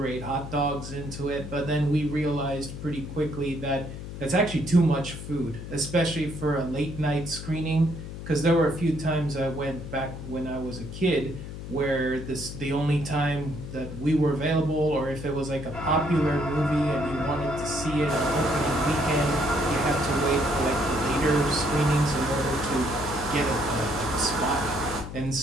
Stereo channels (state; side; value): noise; left; hum, 9 dB below the sound